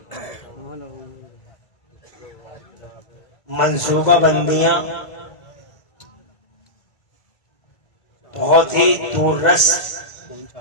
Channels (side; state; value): right; late; 1.5 ms